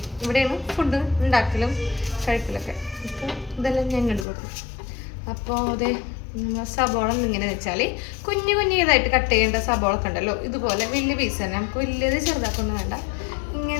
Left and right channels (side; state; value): right; drops out; at 4.2 s